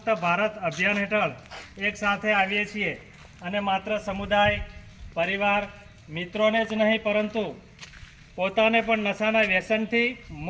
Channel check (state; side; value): identical; both; correlation 1.00